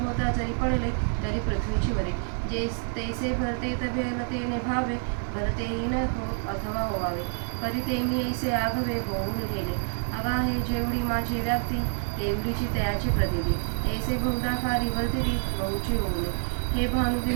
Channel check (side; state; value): left; silent; 58 dB below the other